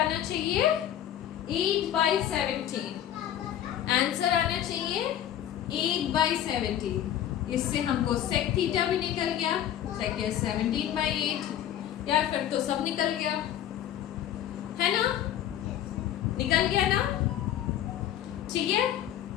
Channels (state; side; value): quieter; right; 11.1 dB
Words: चाहिए 8/17, आंसर आना चाहिए 8/17। इससे हमको sec थीटा भी निकल गया, sec is 17/8, यार फिर तो सब निकल गया, है ना, निकल गया ना, ठीक है।